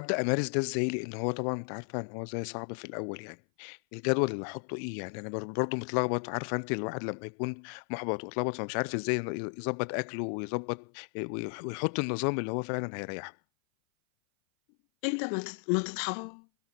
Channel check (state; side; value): silent; right; 55 dB below the other